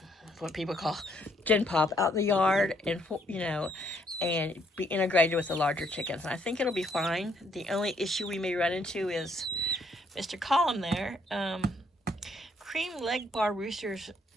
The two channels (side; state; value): both; normal; correlation 0.69